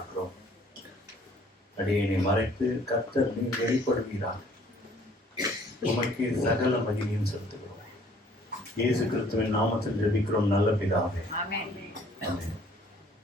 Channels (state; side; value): normal; both; correlation 0.58